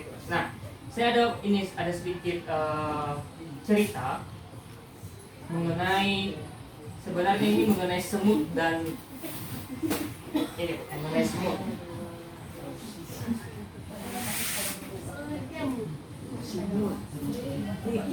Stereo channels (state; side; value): identical; both; correlation 1.00